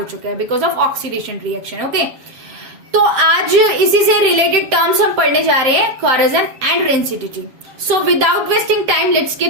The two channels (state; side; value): late; left; 7.3 ms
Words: चुका है because of oxidation reaction. Okay, तो आज इसी से रिलेटेड टर्म्स हम पढ़ने जा रहे हैं, corrosion and rancidity. So without wasting time let's